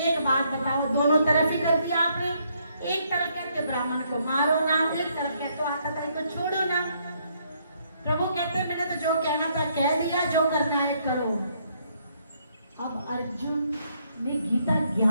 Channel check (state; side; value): inverted; both; correlation -0.71